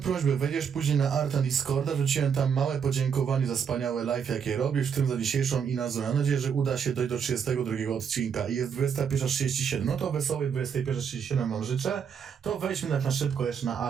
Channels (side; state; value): left; quieter; 7.2 dB